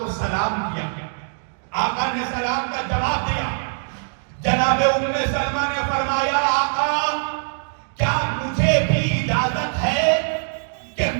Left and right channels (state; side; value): silent; left; digital silence